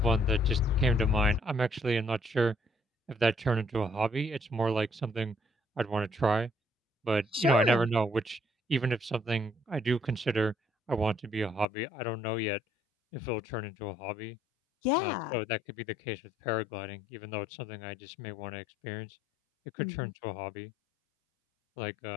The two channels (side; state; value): right; drops out; at 11.7 s